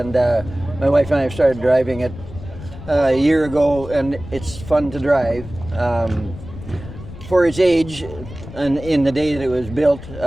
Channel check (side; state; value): left; noise; rumble, 14 dB below the sound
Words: my wife and I started driving it a year ago, and it's fun to drive. For its age, and in the day that it was built,